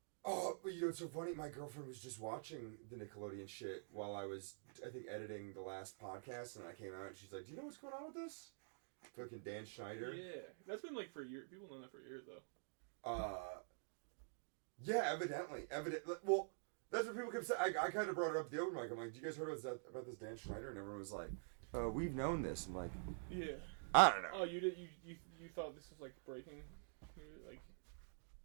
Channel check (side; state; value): left; silent; digital silence